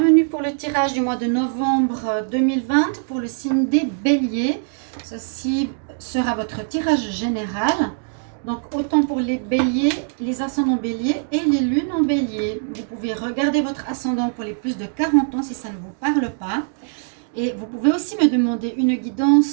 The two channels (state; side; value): silent; left; digital silence